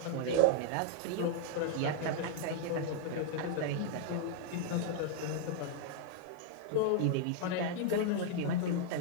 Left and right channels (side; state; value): both; different; correlation 0.00